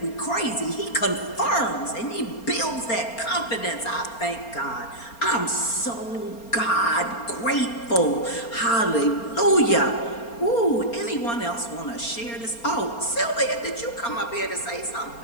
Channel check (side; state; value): right; late; 4.3 ms